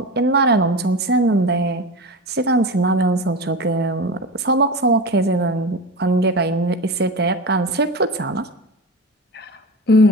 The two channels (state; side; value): normal; both; correlation 0.26